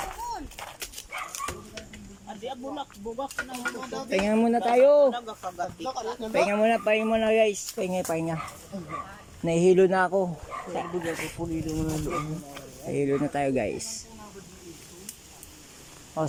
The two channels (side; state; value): both; identical; correlation 1.00